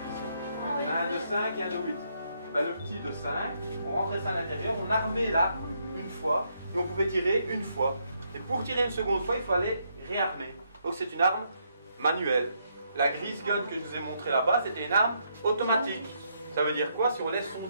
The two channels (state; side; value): inverted; both; correlation -0.75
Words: Il y en a un de 5 et un de 8. Ben, le petit de 5, on rentrait ça à l'intérieur, on armait l'arme une fois, et on pouvait tirer une fois. Et pour tirer une seconde fois, il fallait réarmer. Donc c'est une arme manuelle. La Grease Gun que je vous ai montré là-bas, c'était une arme automatique. Ça veut dire quoi? Si on laisse son